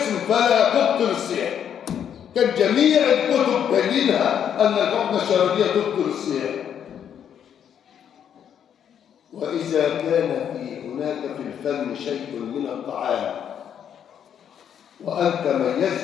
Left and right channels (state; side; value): quieter; right; 8.9 dB